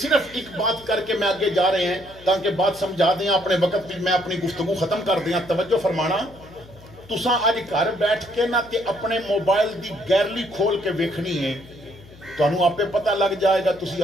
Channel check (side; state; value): left; noise; hum, 22 dB below the sound